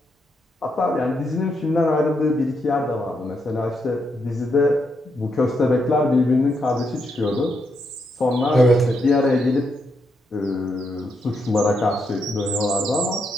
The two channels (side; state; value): both; normal; correlation 0.80